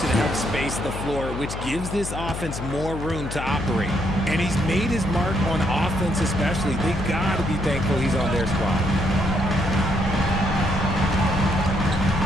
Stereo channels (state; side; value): noise; left; hum, 7 dB below the sound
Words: it helps space the floor, which gives this offense more room to operate. And he's made his mark on offense especially. They got to be thankful he's on their squad.